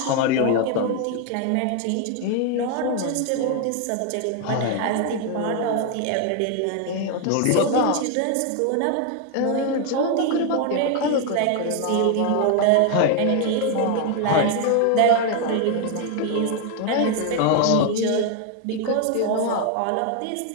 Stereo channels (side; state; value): both; different; correlation 0.01